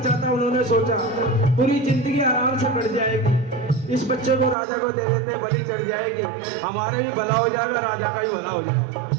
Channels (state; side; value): drops out; left; at 4.5 s